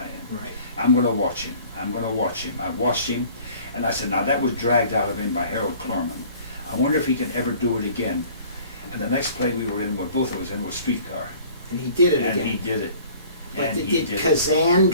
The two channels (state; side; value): inverted; both; correlation -0.50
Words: am. Right. I'm going to watch him. I'm going to watch him. I watched him, and I said, now that was dragged out of him by Harold Clurman. I wonder if he can ever do it again. And the next play we were in, where both of us in, was Streetcar. And he did it And again. he did it. But And he did did it. Kazan